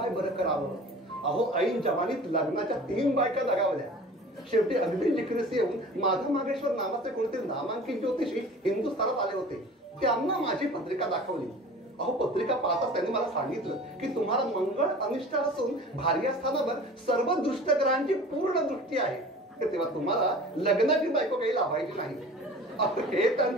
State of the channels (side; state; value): both; normal; correlation 0.42